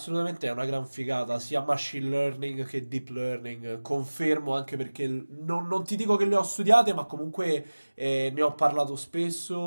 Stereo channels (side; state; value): both; inverted; correlation -1.00